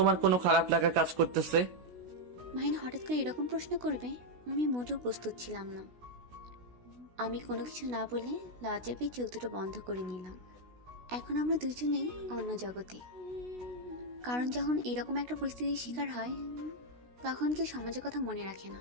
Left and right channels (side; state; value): left; late; 16 ms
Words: কোনো খারাপ লাগা কাজ করতেছে? মাহিন হঠাৎ করে এরকম প্রশ্ন করবে আমি মোটেও প্রস্তুত ছিলাম না। আমি কোনো কিছু না বলে লজ্জা পেয়ে চোখ দুটো বন্ধ করে নিলাম। এখন আমরা দুজনেই অন্য জগতে, কারণ যখন এরকম একটা পরিস্থিতির শিকার হয় তখন কেউ সমাজের কথা মনে রাখে না,